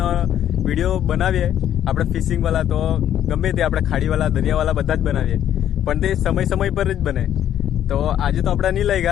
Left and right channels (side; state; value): right; quieter; 10.8 dB